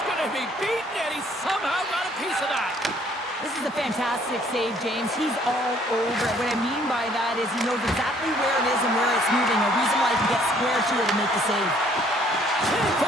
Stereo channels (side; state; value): both; normal; correlation 0.61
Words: going to be beaten, and he somehow got a piece of that. This is a fantastic save, James. He's all over it. What I mean by that is he knows exactly where it is and where it's moving. A reason why he can get square to it and make the save. Can't